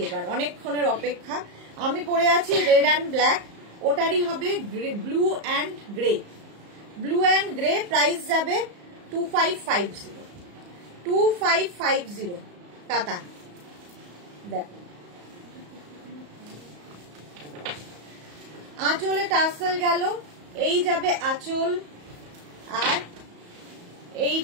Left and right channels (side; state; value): left; late; 34 ms